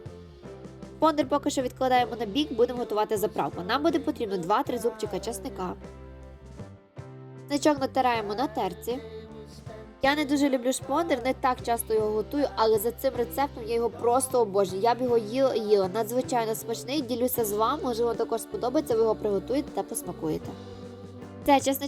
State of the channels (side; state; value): both; identical; correlation 1.00